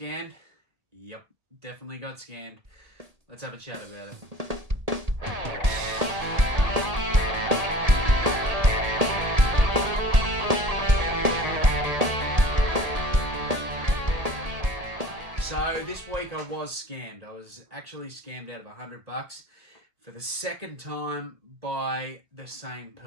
Yep, definitely got scammed. Let's have a chat about it. So this week I was scammed. I was actually scammed out of $100 for the second time by the same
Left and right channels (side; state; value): left; late; 1.8 ms